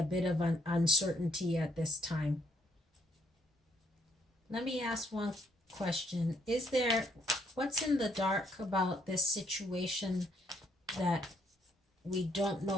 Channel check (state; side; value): normal; both; correlation 0.69